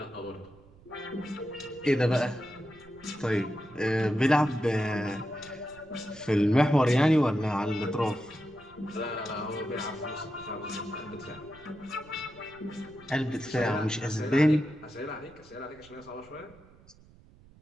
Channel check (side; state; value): right; noise; rumble, 25 dB below the sound